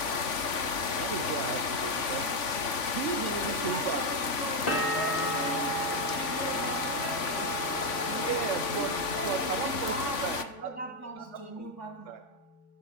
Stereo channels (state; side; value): late; right; 3.5 ms